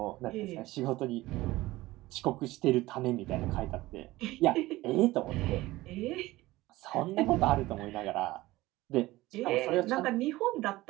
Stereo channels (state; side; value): quieter; left; 18.3 dB